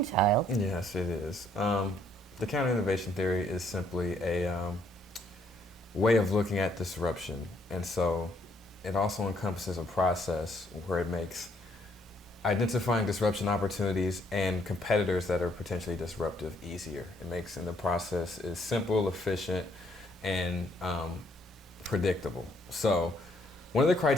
Yes, it is. The counter-innovation theory is simply a way of looking at disruption. And so it also encompasses a process where it makes identifying disruption opportunities and competitors that are potentially disruptive easier. It makes in the process is simple, efficient, and predictable. So one of the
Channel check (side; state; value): both; normal; correlation 0.68